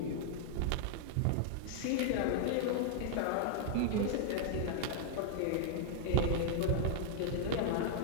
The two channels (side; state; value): both; different; correlation -0.01